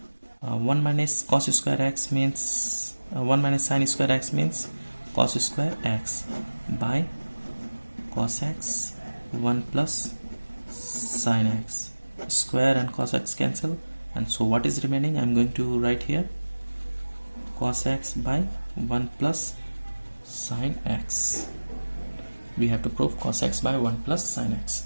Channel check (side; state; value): both; inverted; correlation -1.00